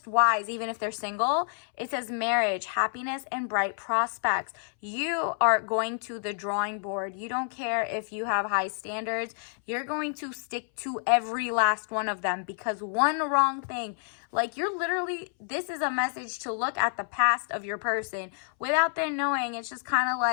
wise, even if they're single. It says marriage, happiness, and bright prospects. You are going to the drawing board. You don't care if you have high standards. You're going to stick to every last one of them, because one wrong thing, like, you're literally, this is a message to look at the past of your person without them knowing. It's just kind of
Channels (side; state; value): right; silent; 59 dB below the other